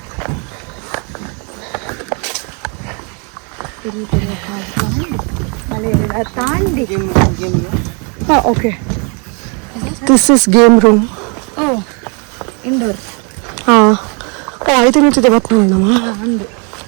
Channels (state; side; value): quieter; left; 35.3 dB